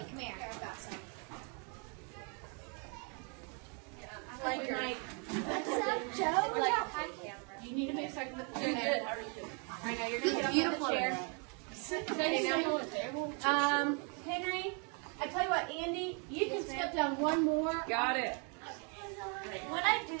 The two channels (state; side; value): quieter; left; 37.0 dB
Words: come here. What's up, Joe? Like, hi, camera. You need to make a second with the chair. Good. How are you doing? I know you're going to get up on the chair. Henry, I tell you what, Andy, you can step down one more. Got it. When I do